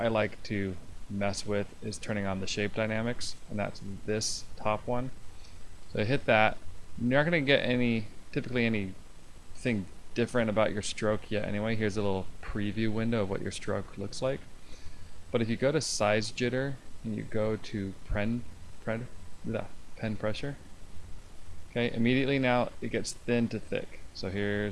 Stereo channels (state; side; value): identical; both; correlation 1.00